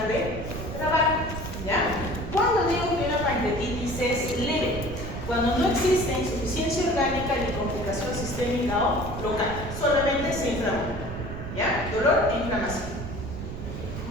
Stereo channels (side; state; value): right; noise; rumble, 8 dB below the sound